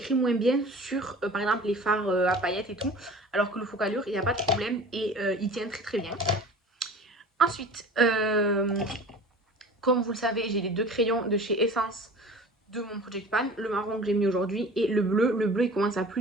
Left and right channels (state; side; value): normal; both; correlation 0.41